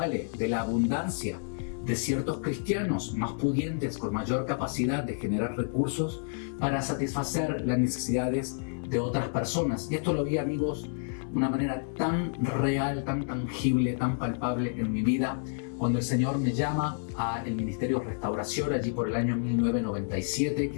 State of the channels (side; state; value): right; silent; digital silence